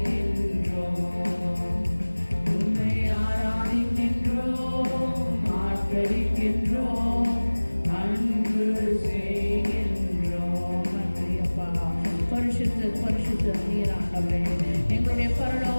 உம்மை ஆராதிக்கின்றோம், ஆர்ப்பரிக்கின்றோம், அன்பு செய்கின்றோம். நன்றி அப்பா. பரிசுத்த பரிசுத்த நீர் ஆண்டவரே, எங்களுடைய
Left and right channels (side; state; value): both; inverted; correlation -1.00